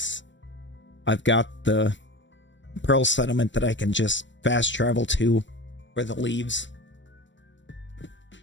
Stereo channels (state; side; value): late; right; 0.54 ms